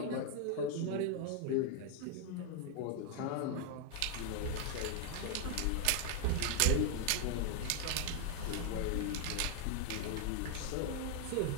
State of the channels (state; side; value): different; both; correlation 0.00